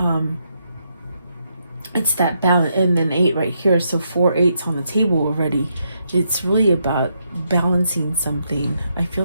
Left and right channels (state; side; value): inverted; both; correlation -0.79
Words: It's that balance, and then 8 right here, so 4 8s on the table already. It's really about balancing something. I feel